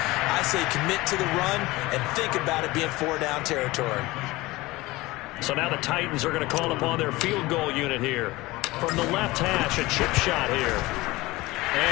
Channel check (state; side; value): quieter; right; 20.2 dB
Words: I say commit to the run and think about it being 4-down territory. So now the Titans are going to call upon their field goal unit here. From the left hash, a chip shot here.